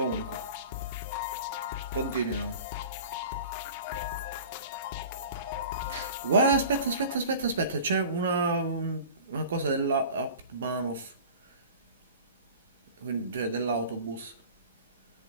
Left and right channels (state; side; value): inverted; both; correlation -0.39